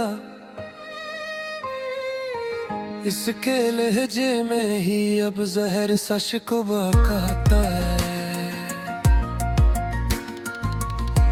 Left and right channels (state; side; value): identical; both; correlation 1.00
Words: इसके लहजे में ही अब जहर सा शिकवा कहता है।